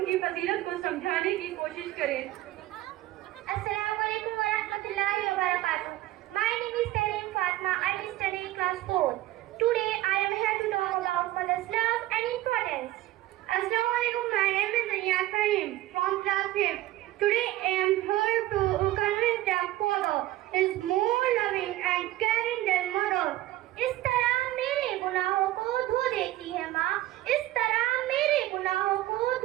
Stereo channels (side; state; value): left; quieter; 15.9 dB